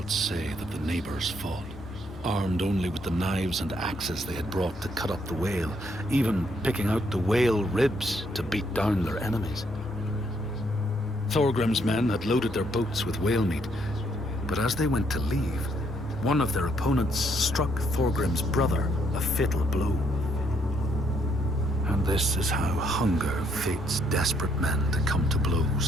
say that the neighbors fought, armed only with the knives and axes they had brought to cut up the whale, even picking out the whale ribs to beat down their enemies. Thorgrim's men had loaded their boats with whale meat, but as they went to leave, one of their opponents struck Thorgrim's brother a fatal blow. And this is how hunger fates desperate men to come to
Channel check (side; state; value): both; normal; correlation 0.71